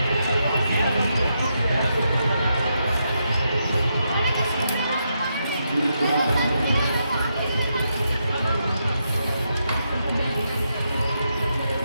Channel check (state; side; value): inverted; both; correlation -0.82